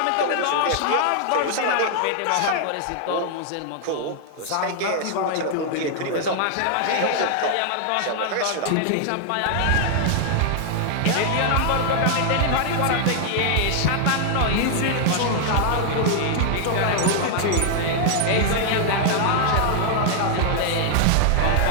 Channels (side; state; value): both; different; correlation 0.00